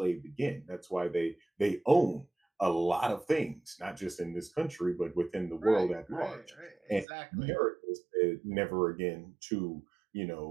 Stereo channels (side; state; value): left; drops out; at 7.1 s